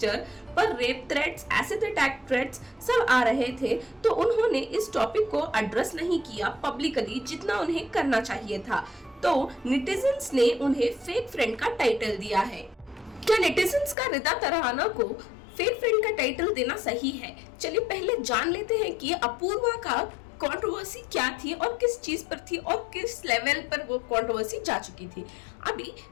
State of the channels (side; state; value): right; drops out; at 14.0 s